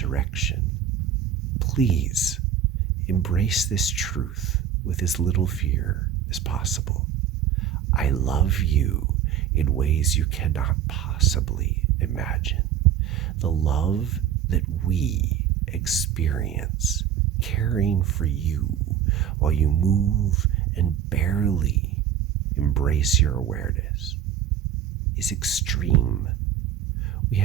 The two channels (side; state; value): left; quieter; 9.7 dB